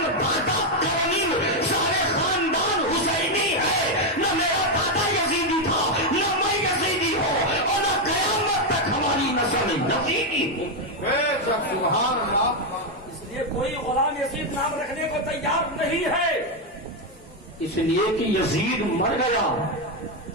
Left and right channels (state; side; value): normal; both; correlation 0.04